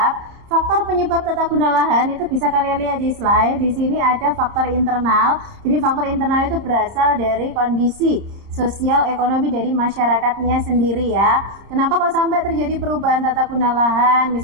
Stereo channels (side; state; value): left; late; 30 ms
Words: tata guna lahan itu bisa kalian lihat di slide. Di sini ada faktor internal. Jadi faktor internal itu berasal dari kondisi sosial ekonomi dari masyarakatnya sendiri ya. Kenapa kok sampai terjadi perubahan tata guna lahan?